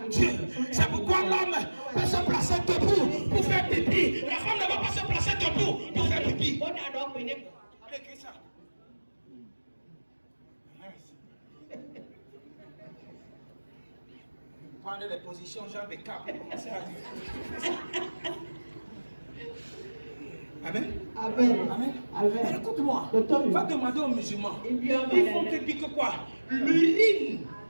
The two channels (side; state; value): both; inverted; correlation -1.00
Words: Dieu. C'est pourquoi l'homme peut se placer debout pour faire pipi. La femme ne va pas se placer debout pour faire pipi. Allez, écris ça. Prenez les positions, jambes et cap. Amen. Amen. Amen. Amen. Écoute-moi. Va demander aux musulmans. Ils vont te dire que quoi? L'urine.